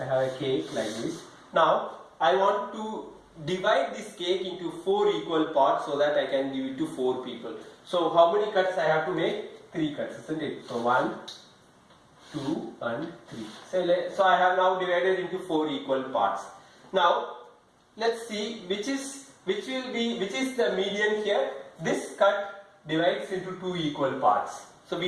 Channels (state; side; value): identical; both; correlation 1.00